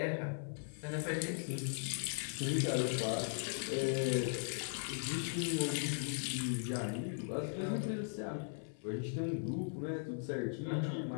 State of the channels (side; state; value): right; silent; 52 dB below the other